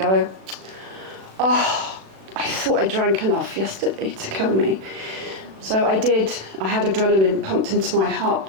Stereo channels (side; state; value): left; late; 36 ms